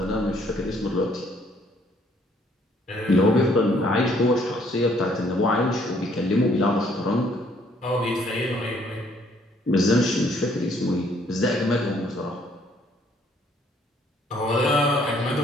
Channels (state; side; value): normal; both; correlation 0.64